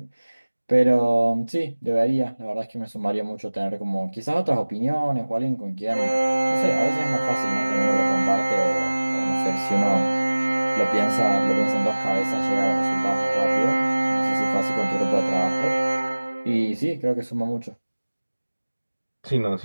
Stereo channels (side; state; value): both; inverted; correlation -1.00